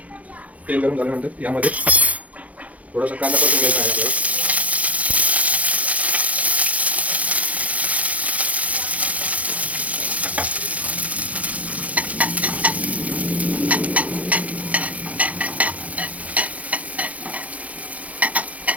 तेल गरम झाल्यानंतर यामध्ये थोडासा कांदा परतून घ्यायचा आहे आपल्याला।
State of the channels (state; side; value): late; left; 0.069 ms